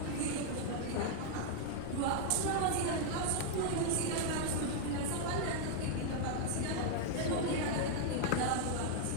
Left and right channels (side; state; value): both; different; correlation 0.00